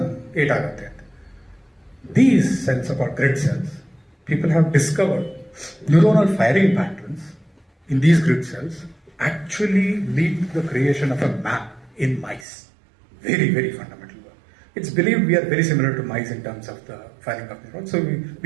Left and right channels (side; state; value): left; drops out; at 12.5 s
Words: ಏಟಾಗುತ್ತೆ ಅಂತ. These cells are called grid cells. People have discovered neuronal firing patterns in these grid cells actually lead to the creation of a map in mice. Very fundamental work. It's believed we are very similar to mice in terms of the firing of neurons. So